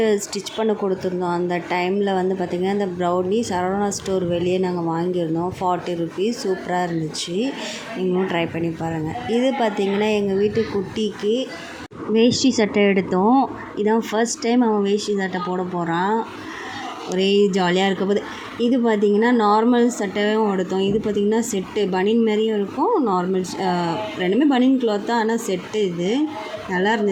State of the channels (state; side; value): identical; both; correlation 1.00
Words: ஸ்டிச் பண்ண கொடுத்துருந்தோம். அந்த டைமில் பார்த்திங்கன்னா இந்த ப்ரௌனி சரவணா ஸ்டோர் வெளியே நாங்கள் வாங்கியிருந்தோம். 40 ருபீஸ். சூப்பராக இருந்துச்சு. நீங்களும் ட்ரை பண்ணி பாருங்கள். இது பார்த்திங்கன்னா எங்கள் வீட்டு குட்டிக்கு வேஷ்டி சட்டை எடுத்தோம். இதான் ஃபர்ஸ்ட் டைம் அவன் வேஷ்டி சட்டை போட போகிறான். ஒரே ஜாலியாக இருக்க போது. இது பார்த்திங்கன்னா நார்மல் சட்டையும் எடுத்தோம். இது பார்த்திங்கன்னா செட்டு பனியன் மாதிரியும் இருக்கும், நார்மல் ரெண்டுமே பனியன் கிளாத் தான், ஆனால் செட்டு. இது நல்லா